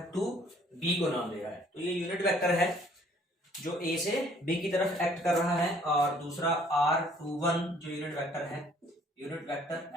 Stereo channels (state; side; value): normal; both; correlation 0.59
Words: टू B को नाम दे रहा है, तो ये यूनिट वेक्टर है जो A से B की तरफ एक्ट कर रहा है। और दूसरा R21 जो यूनिट वेक्टर है, unit vector